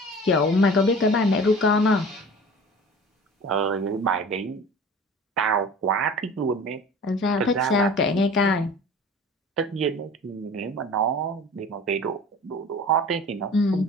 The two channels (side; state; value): both; normal; correlation 0.41